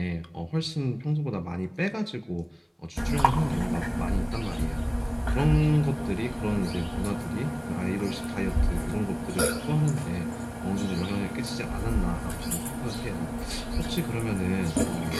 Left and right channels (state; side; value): identical; both; correlation 1.00